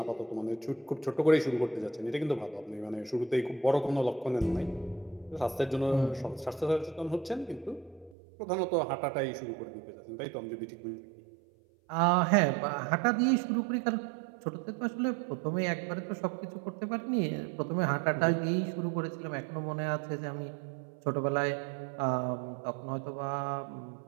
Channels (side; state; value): left; drops out; at 8.2 s